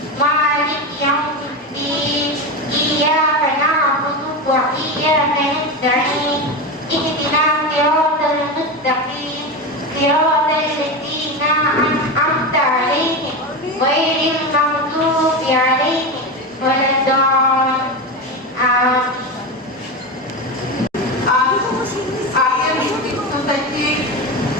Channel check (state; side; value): normal; both; correlation 0.19